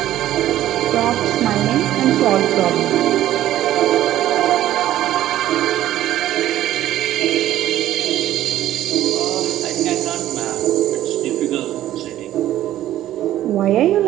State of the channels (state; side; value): quieter; left; 13.1 dB